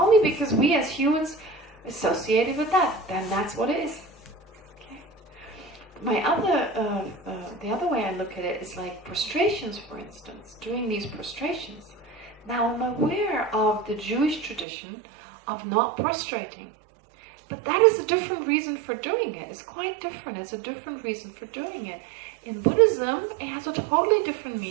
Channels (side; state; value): left; drops out; at 14.7 s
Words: because we as humans associated with that, then that's what it is. Okay. The other way I look at it is like prostrations, for instance, doing these prostrations. Now I'm aware of the Jewish tradition of not prostrating. But that is a different reason for doing it. It's quite different. It's a different reason for doing it. In Buddhism, it has a totally different